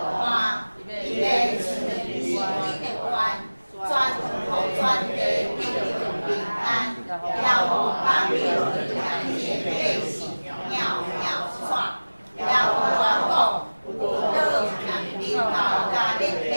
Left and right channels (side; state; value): both; inverted; correlation -1.00